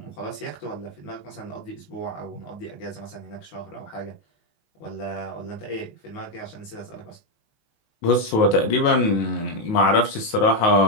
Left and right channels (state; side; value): late; right; 19 ms